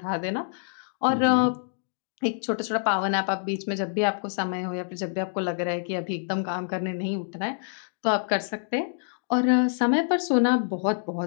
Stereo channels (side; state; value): right; silent; digital silence